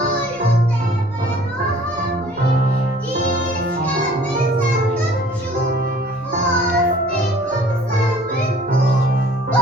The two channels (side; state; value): right; noise; rumble, 29 dB below the sound